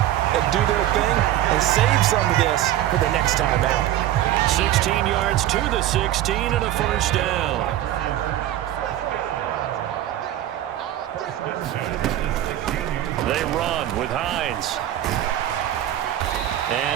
and do their thing and save some of this for the next time out. 16 yards to the 16 and a 1st down. They run with Hines.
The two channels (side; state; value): left; quieter; 13.0 dB